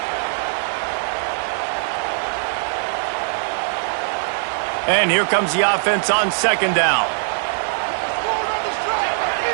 And here comes the offense on second down.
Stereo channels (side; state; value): left; silent; digital silence